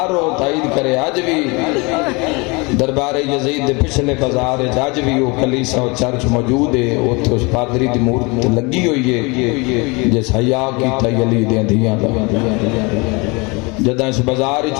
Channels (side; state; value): right; quieter; 27.6 dB